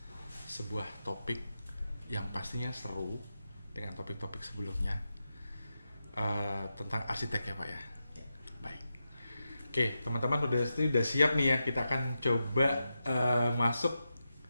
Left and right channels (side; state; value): both; inverted; correlation -0.89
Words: sebuah topik yang pastinya seru dengan topik-topik sebelumnya, tentang arsitek ya Pak ya. Baik. Oke, teman-teman udah siap nih ya. Kita akan coba masuk.